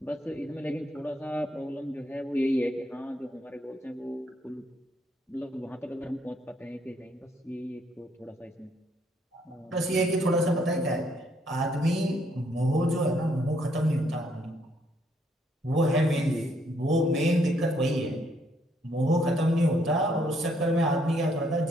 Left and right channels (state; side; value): normal; both; correlation 0.70